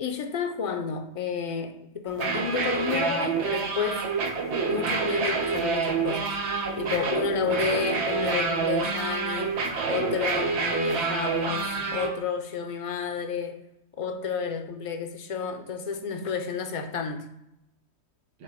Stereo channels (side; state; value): left; late; 3.1 ms